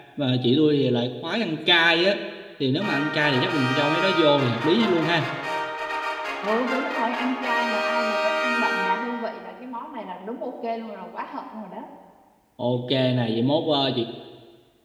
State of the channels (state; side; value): identical; both; correlation 1.00